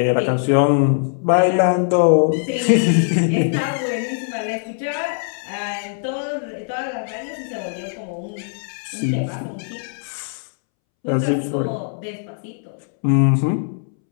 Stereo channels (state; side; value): silent; right; 65 dB below the other